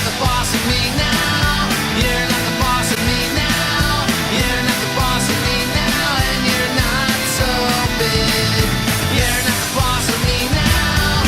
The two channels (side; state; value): both; identical; correlation 1.00